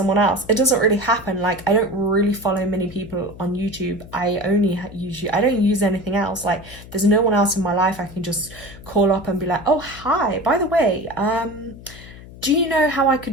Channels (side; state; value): left; noise; hum, 17 dB below the sound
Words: else, it doesn't really happen. Like, I don't really follow many people on YouTube. I only use YouTube. I don't use anything else. Like, there's no one else in my life I can just call up and be like, oh, hi, by the way, do you know how I